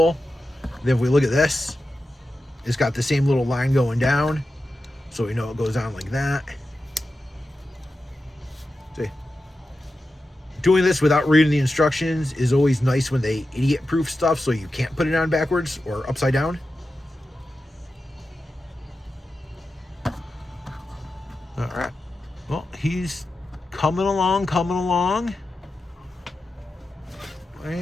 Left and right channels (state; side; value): normal; both; correlation 0.91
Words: Then if we look at this, it's got the same little line going down. So we know it goes on like that. See, doing this without reading the instructions is always nice when they idiot-proof stuff so you can't put it on backwards or upside down. All right. Well, he's coming along.